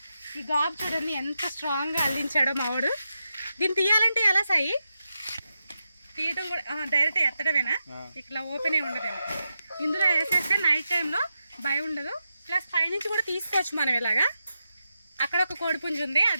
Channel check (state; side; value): inverted; both; correlation -0.88